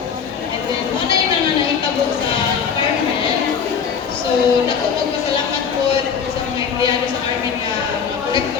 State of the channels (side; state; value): right; quieter; 6.8 dB